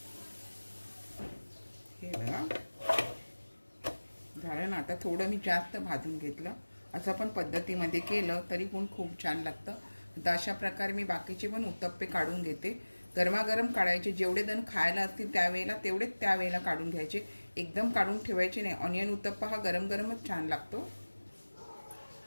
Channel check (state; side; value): inverted; both; correlation -1.00